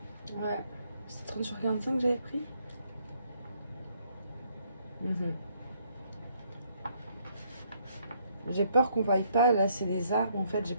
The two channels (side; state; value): both; inverted; correlation -0.69